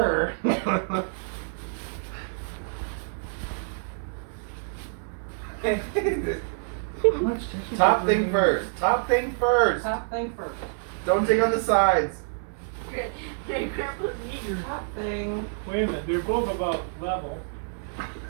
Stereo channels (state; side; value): silent; left; digital silence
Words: Top thing first. Top thing first. Top thing first. Don't take on the sides. Grandpa's eager. Top thing. Wait a minute, they're both about level.